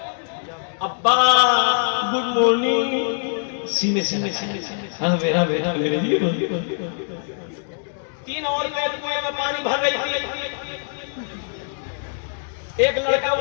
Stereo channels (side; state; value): right; silent; digital silence